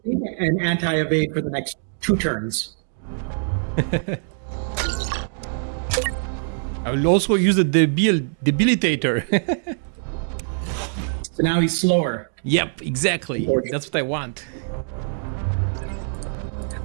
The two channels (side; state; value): left; silent; digital silence